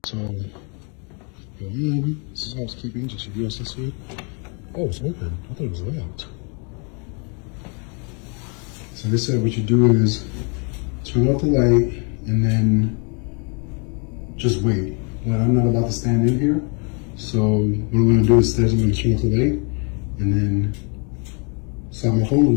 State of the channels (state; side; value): quieter; right; 35.9 dB